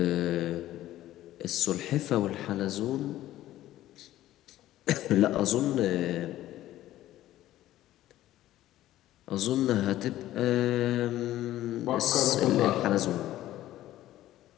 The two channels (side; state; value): right; quieter; 14.2 dB